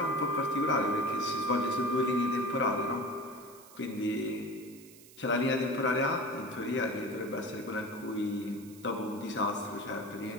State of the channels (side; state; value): right; noise; hiss, 21 dB below the sound